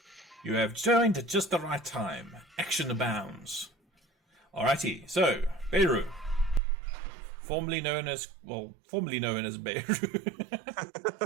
You have joined at just the right time. Action abounds. Alrighty, so, Beirut. Formerly known as Beirut.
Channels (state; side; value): drops out; left; at 6.6 s